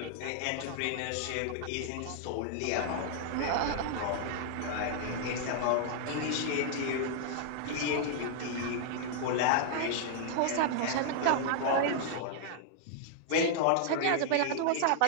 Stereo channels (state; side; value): different; both; correlation -0.01